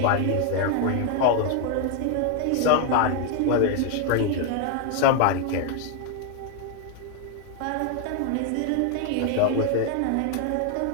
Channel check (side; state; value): both; different; correlation 0.00